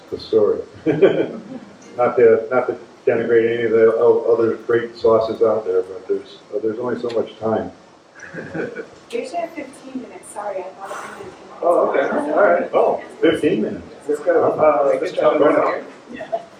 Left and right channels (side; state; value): both; identical; correlation 1.00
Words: the story. not to denigrate any of the other great sauces out there, but there's only so much time. You should have 15 minutes. Sorry, I thought it was 10 minutes. Oh, okay. All right. Oh, 15 minutes. Let's go. Let's jump right here.